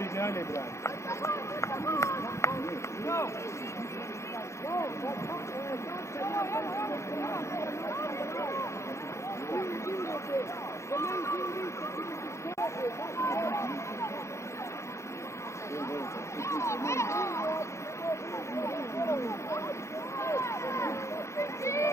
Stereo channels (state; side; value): late; right; 0.14 ms